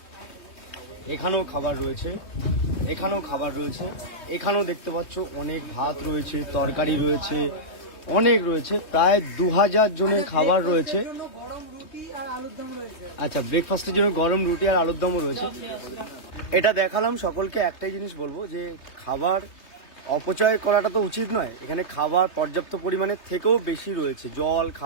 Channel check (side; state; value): right; late; 3.3 ms